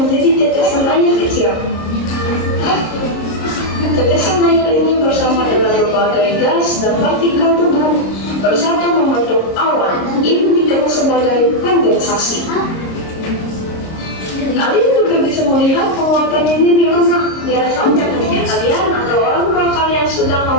menjadi tetesan air kecil. Tetesan air ini bersama dengan berbagai gas dan partikel debu bersatu membentuk awan. Ini dikenal sebagai kondensasi. Kalian juga bisa melihat penguapan ini di rumah. Biasanya ketika kalian atau orang tua kalian sedang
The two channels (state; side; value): late; right; 26 ms